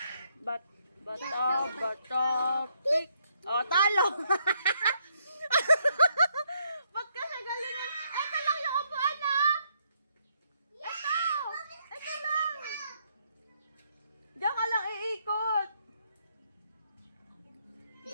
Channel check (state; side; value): inverted; both; correlation -0.74